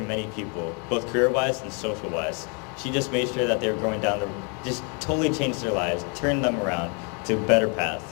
many people, both career-wise and social-wise. She just made sure that they were going down just totally changed their lives, turned them around to a better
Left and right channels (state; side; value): quieter; right; 36.4 dB